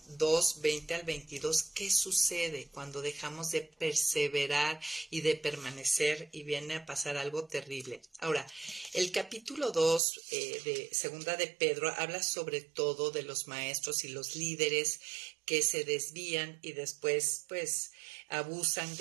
2, 20 al 22, ¿qué sucede cuando dejamos de perseverar y de permanecer y viene a pasar algo terrible? Ahora, el capítulo 2 de 2 de Pedro habla sobre todo de los maestros y los líderes que se desvían y después pues abusan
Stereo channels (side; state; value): left; drops out; at 10.0 s